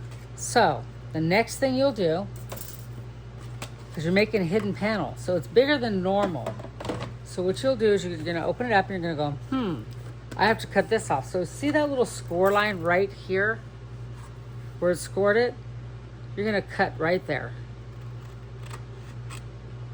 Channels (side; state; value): both; identical; correlation 1.00